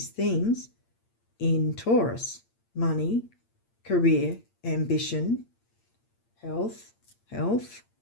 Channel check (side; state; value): right; late; 8.7 ms